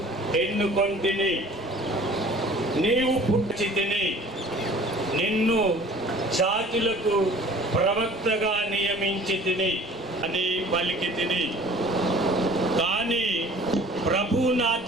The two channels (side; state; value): both; normal; correlation 0.48